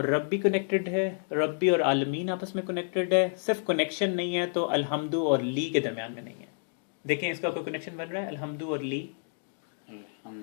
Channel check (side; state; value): right; silent; digital silence